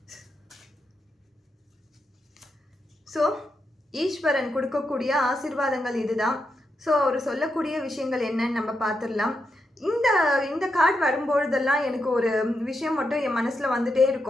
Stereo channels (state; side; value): normal; both; correlation 0.84